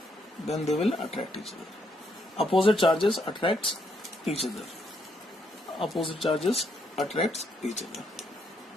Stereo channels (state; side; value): normal; both; correlation 0.75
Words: Opposite charges attracts each other.